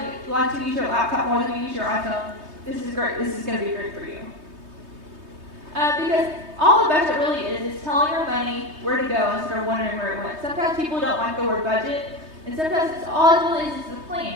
like to use your laptop more than you use your iPhone, this is great. This is going to be great for you. Because all the budget really is telling your money where to go instead of wondering where it went. Sometimes people don't like the word budget, and sometimes all it really is a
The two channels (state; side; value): late; left; 3.2 ms